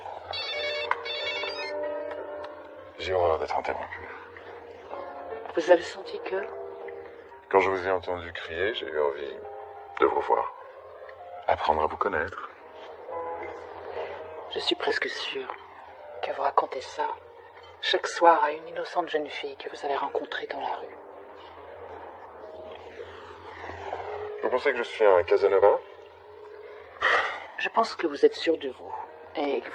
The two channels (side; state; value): both; identical; correlation 1.00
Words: J'ai horreur d'être interrompu. Vous avez senti que... Quand je vous ai entendu crier, j'ai eu envie de vous voir. Apprendre à vous connaître. Je suis presque sûre que vous racontez ça chaque soir à une innocente jeune fille que vous avez rencontrée dans la rue. Vous pensez que je suis un Casanova? Je pense que vous êtes sûr de vous et que